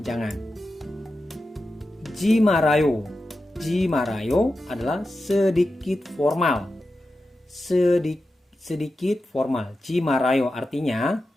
jangan. Jimarayo adalah sedikit formal. Sedikit formal. Jimarayo artinya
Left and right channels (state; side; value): normal; both; correlation 0.91